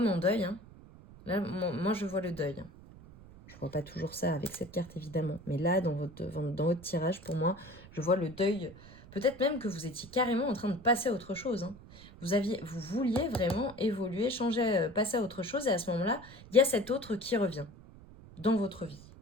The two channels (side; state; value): right; noise; rumble, 19 dB below the sound